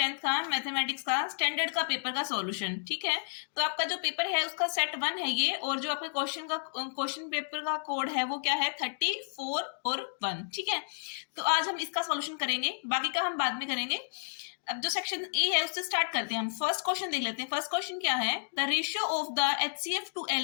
का मैथमेटिक्स का स्टैंडर्ड का पेपर का सॉल्यूशन। ठीक है, तो आपका जो पेपर है उसका सेट 1 है ये, और जो आपके क्वेश्चन पेपर का कोड है वो क्या है 34 और 1। ठीक है, तो आज हम इसका सॉल्यूशन करेंगे, बाकी का हम बाद में करेंगे। अब जो सेक्शन ए है उससे स्टार्ट करते हैं। हम फर्स्ट क्वेश्चन देख लेते हैं। फर्स्ट क्वेश्चन क्या है, the ratio of the HCF to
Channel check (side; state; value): right; silent; digital silence